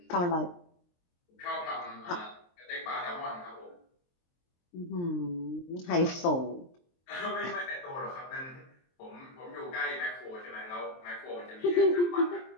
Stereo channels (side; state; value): right; late; 23 ms